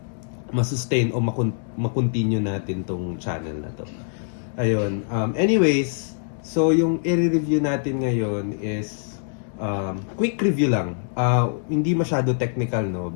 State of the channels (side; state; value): right; silent; 63 dB below the other